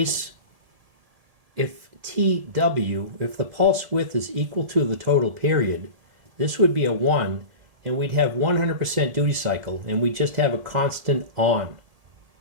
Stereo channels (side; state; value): left; late; 1.7 ms